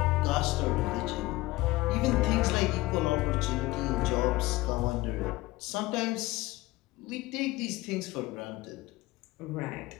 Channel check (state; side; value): quieter; right; 19.3 dB